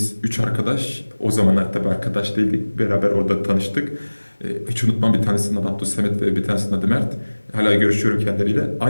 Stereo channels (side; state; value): both; inverted; correlation -1.00